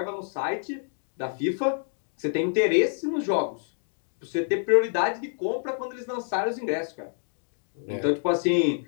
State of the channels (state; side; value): silent; right; digital silence